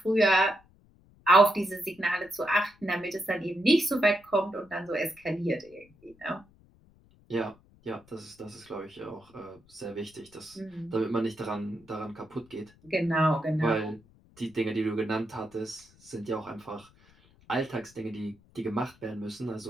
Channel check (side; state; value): left; noise; rumble, 28 dB below the sound